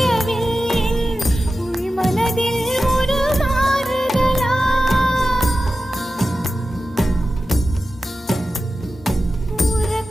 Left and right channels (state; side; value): normal; both; correlation 0.93